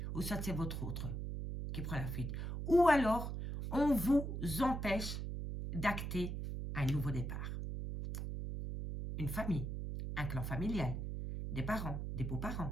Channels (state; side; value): noise; right; hum, 4 dB below the sound